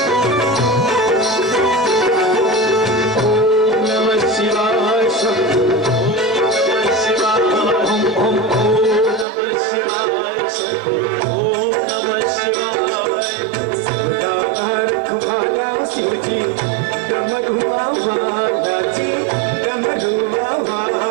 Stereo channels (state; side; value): drops out; left; at 9.2 s